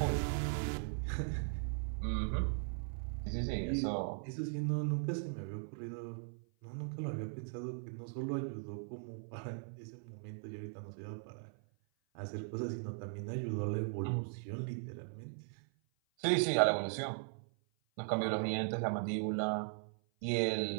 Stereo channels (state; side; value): silent; left; 52 dB below the other